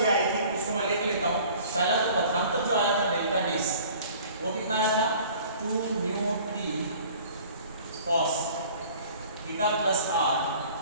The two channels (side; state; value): both; inverted; correlation -0.49